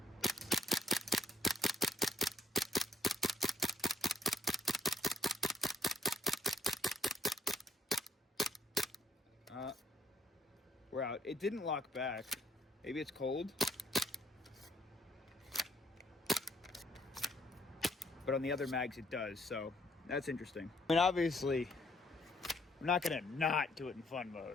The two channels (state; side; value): normal; both; correlation 0.70